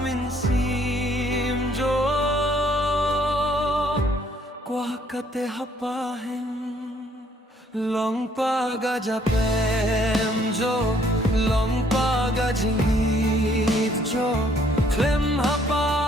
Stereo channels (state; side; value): normal; both; correlation 0.64